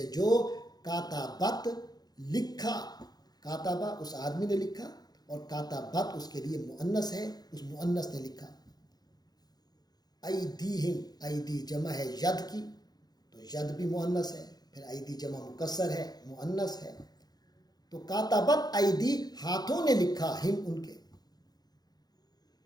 جو کاتبت لکھا، کاتبہ اس آدمی نے لکھا، اور کاتبت اس کے لیے مؤنث ہے، اس مؤنث نے لکھا۔ ایدیہم، ایدی جمع ہے ید کی، تو ید بھی مؤنث ہے، پھر ایدی جمع مکسر ہے، مؤنث ہے، تو کاتبت ایدی ہاتھوں نے لکھا، ہم ان کے،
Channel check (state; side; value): late; right; 0.19 ms